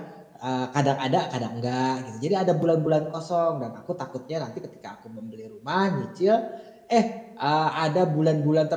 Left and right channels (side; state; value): both; identical; correlation 1.00